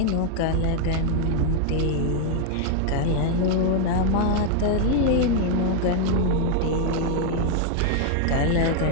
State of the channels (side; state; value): both; different; correlation 0.00